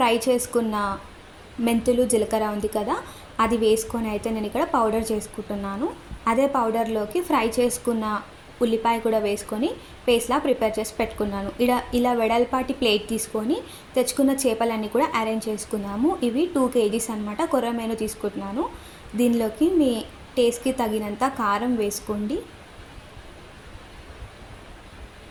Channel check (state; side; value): identical; both; correlation 1.00